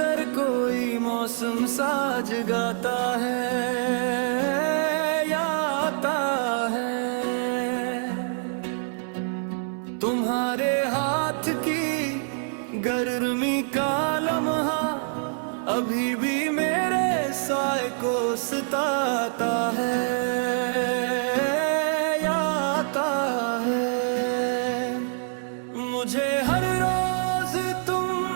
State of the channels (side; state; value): left; silent; 61 dB below the other